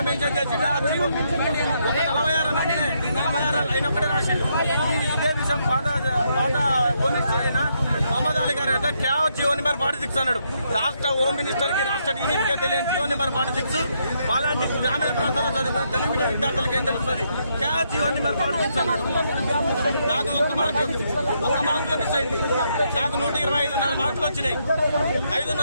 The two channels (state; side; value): inverted; both; correlation -0.76